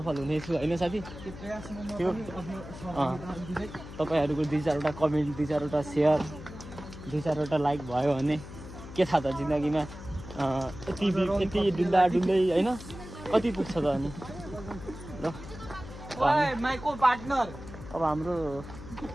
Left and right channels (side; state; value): left; noise; hum, 13 dB below the sound